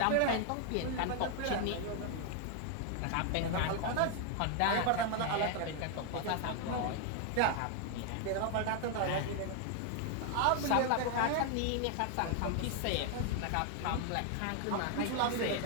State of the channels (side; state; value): both; different; correlation 0.00